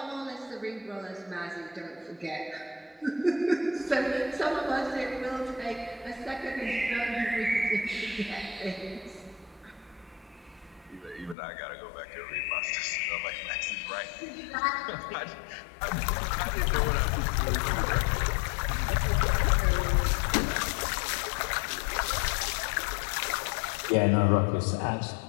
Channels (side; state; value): right; drops out; at 11.4 s